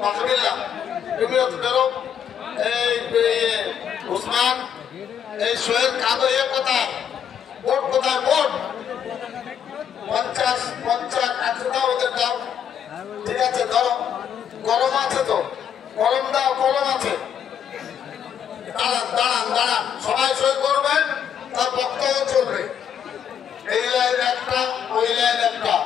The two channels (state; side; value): quieter; right; 8.6 dB